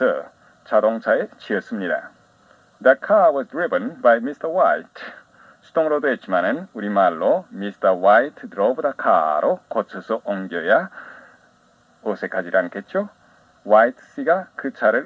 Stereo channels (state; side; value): identical; both; correlation 1.00